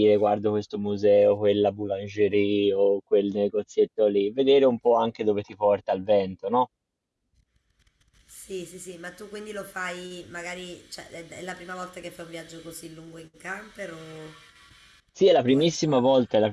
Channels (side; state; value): both; identical; correlation 1.00